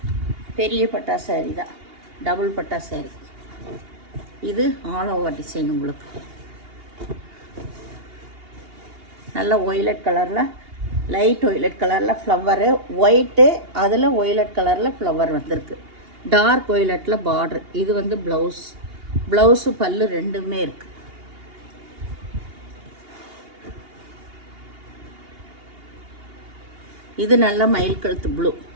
பெரிய பட்டா சாரீ தான், டபுள் பட்டா சாரீ. இது ஆல் ஓவர் டிசைன். உங்களுக்கு நல்லா ஒய்லட் கலரில், லைட் ஒய்லட் கலரில் ஃப்ளவரு, ஒயிட்டு, அதில் ஒய்லட் கலரில் ஃப்ளவர் வந்திருக்கு. டார்க் ஒய்லட்டில் பார்டர். இது வந்து ப்ளவுஸு பல்லு ரெண்டுமே இருக்குது. இது நல்ல மயில் கழுத்து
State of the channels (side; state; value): left; late; 2.8 ms